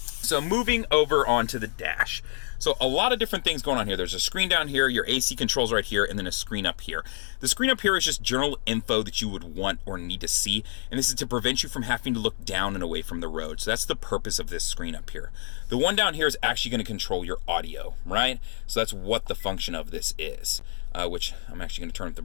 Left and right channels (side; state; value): right; silent; 60 dB below the other